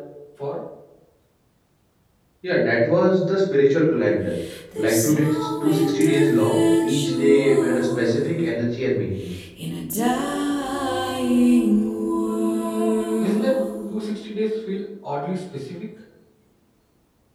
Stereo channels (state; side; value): identical; both; correlation 1.00